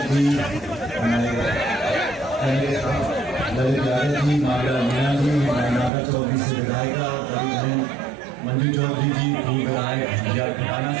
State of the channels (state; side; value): drops out; left; at 5.9 s